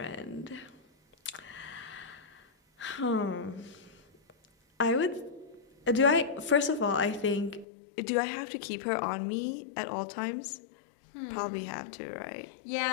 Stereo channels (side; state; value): right; drops out; at 7.7 s